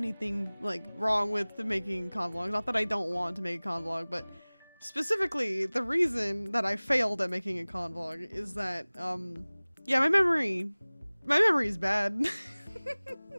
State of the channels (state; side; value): inverted; both; correlation -1.00